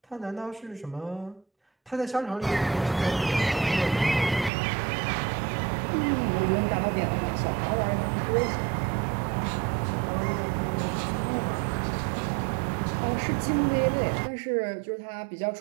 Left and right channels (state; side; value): drops out; left; at 4.5 s